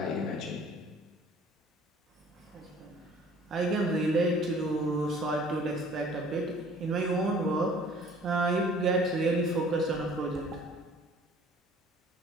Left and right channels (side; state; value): both; normal; correlation 0.52